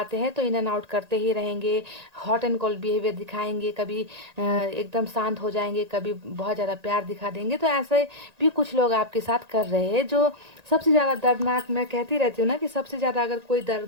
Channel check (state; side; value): late; left; 1.9 ms